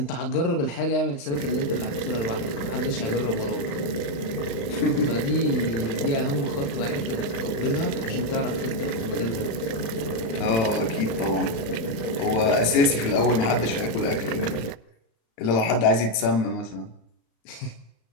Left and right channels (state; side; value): late; right; 35 ms